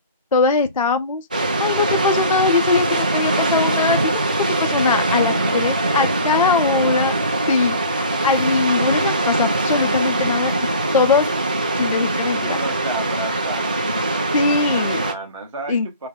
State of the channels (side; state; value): both; inverted; correlation -0.43